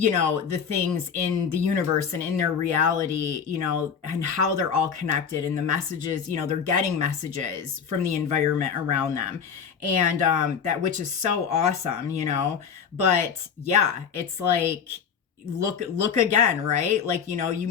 know, the things in the universe and in their reality, you know, and how they're all connected, and the messages, you know, they're getting messages from the environment around them. And that, which is so awesome, you know. But yeah, it's like, look again, right? Like, you know,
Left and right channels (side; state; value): right; quieter; 6.9 dB